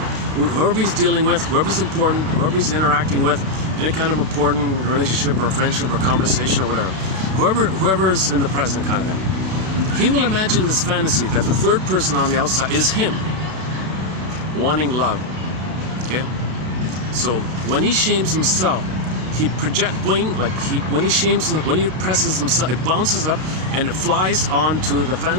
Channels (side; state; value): left; late; 32 ms